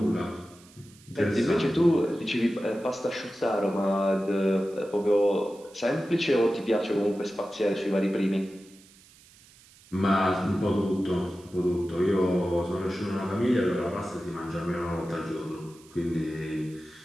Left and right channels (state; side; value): noise; right; hiss, 25 dB below the sound